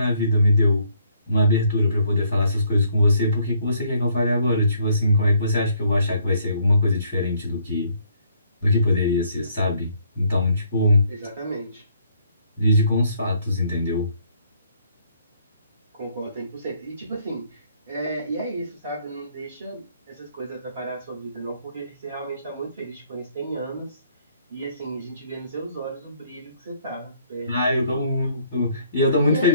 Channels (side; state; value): both; inverted; correlation -0.67